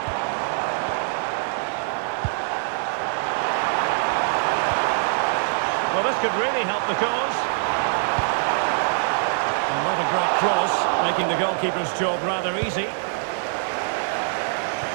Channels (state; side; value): silent; left; digital silence